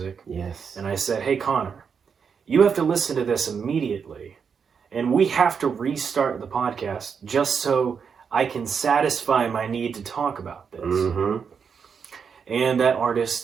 Yes. And I said, hey, Connor, you have to listen to this immediately. And we have to restart the podcast just so I can satisfy my need to talk about this. Mm-hmm. And that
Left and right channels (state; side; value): quieter; left; 6.4 dB